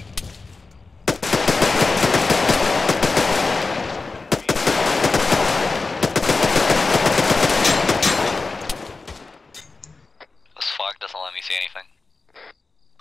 This flag doesn't let me see anything.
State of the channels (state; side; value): quieter; right; 3.9 dB